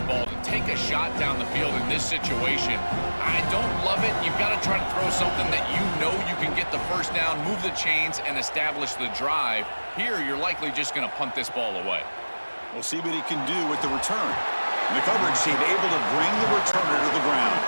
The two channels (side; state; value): both; inverted; correlation -1.00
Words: ball. To take a shot down the field in this situation, I don't love it. You've got to try to throw something that you know you can get the first down, move the chains, and establish the drive. Here, you're likely just going to punt this ball away. We'll see what he can do with the return. And the coverage team able to bring the returner to the ground.